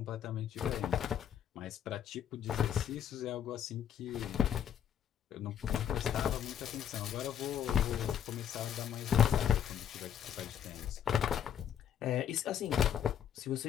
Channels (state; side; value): quieter; right; 9.4 dB